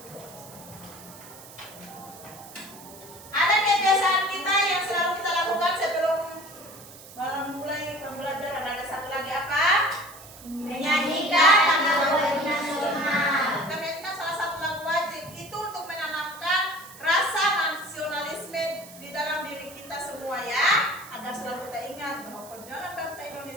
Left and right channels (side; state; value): right; noise; hiss, 18 dB below the sound